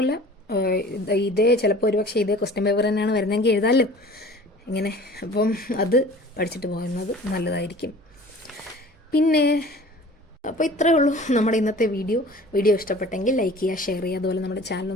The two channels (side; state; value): both; normal; correlation 0.45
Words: ചിലപ്പോൾ ഒരുപക്ഷെ ഇതേ ക്വസ്റ്റ്യൻ പേപ്പർ തന്നെയാണ് വരുന്നതെങ്കിൽ എഴുതാമല്ലോ ഇങ്ങനെ. അപ്പം അത് പഠിച്ചിട്ട് പോകുന്നത് നല്ലതായിരിക്കും. പിന്നെ അപ്പോൾ ഇത്രയേ ഉള്ളൂ നമ്മുടെ ഇന്നത്തെ വീഡിയോ ഇഷ്ടപ്പെട്ടെങ്കിൽ ലൈക്ക് ചെയ്യുക, ഷെയർ ചെയ്യുക, അതുപോലെ നമ്മുടെ